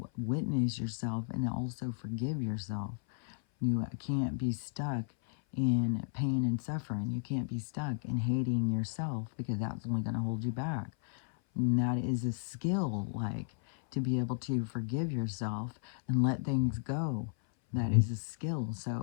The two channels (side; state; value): right; silent; 55 dB below the other